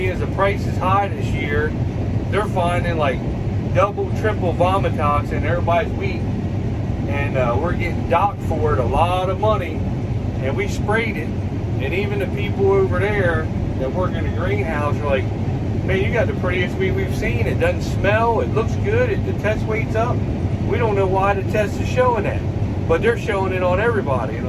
as the price is high this year, they're finding like double, triple vomitoxin in everybody's wheat. And we're getting docked for it a lot of money. And we sprayed it. And even the people over there that work in the greenhouse are like, man, you got the prettiest wheat we've seen. It doesn't smell. It looks good. The test weight's up. We don't know why the test is showing that. But they're showing it on everybody. And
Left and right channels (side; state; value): both; identical; correlation 1.00